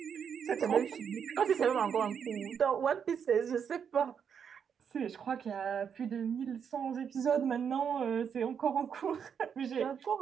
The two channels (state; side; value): quieter; left; 7.4 dB